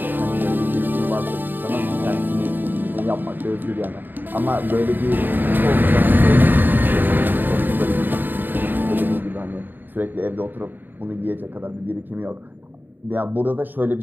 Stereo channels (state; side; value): late; left; 0.091 ms